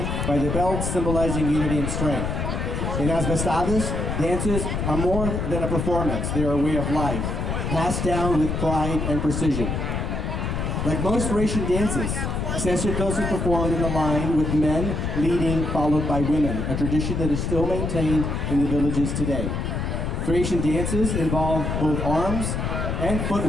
by the belts, symbolizing unity and strength. In Asvestades, dances are more than a performance. They are a way of life, passed down with pride and precision. Like most Thracian dances, Sesirtos is performed in a line with men leading, followed by women, a tradition that is still maintained in the villages today. Thracian dances involve both arms and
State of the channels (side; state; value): left; noise; rumble, 2 dB below the sound